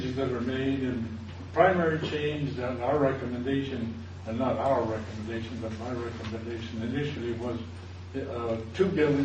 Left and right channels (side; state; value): both; identical; correlation 1.00